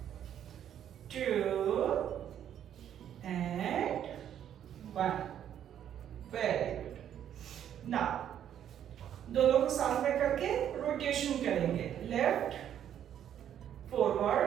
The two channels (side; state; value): left; quieter; 10.0 dB